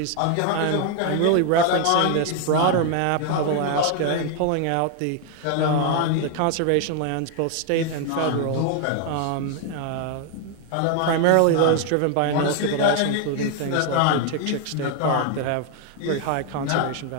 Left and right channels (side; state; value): both; different; correlation 0.00